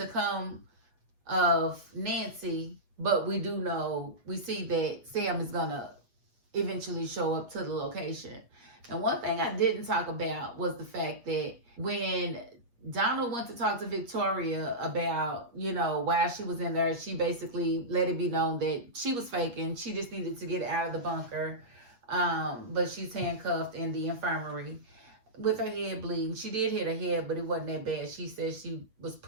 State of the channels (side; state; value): left; late; 8.4 ms